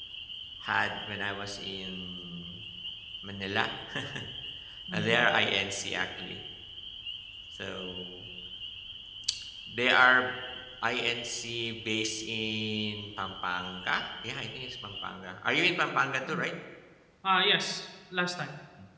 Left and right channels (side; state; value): both; identical; correlation 1.00